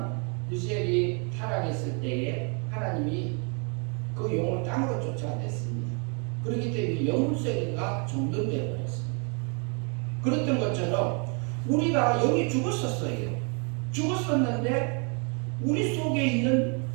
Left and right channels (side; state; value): left; quieter; 36.7 dB